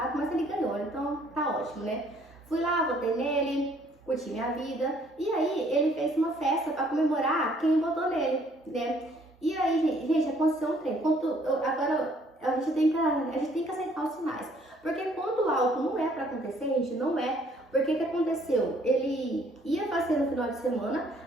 mas ele ganhou, então tá ótimo, né? Fui lá, votei nele, curti minha vida e aí ele fez uma festa para comemorar quem votou nele, né? E aí, gente, aconteceu um trem. Agora a gente tem que aceitar os sinais. Porque quando algo não é para acontecer, gente, não é. Porque o que aconteceu? Ele ia fazer no final de semana,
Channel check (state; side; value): normal; both; correlation 0.62